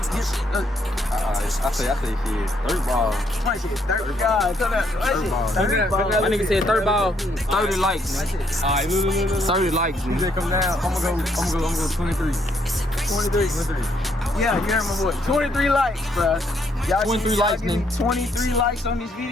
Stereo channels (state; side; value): normal; both; correlation 0.71